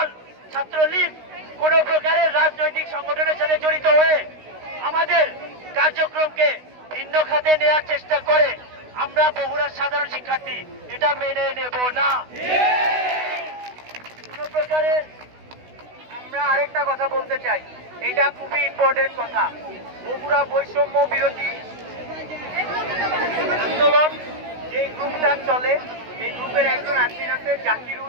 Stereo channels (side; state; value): left; late; 16 ms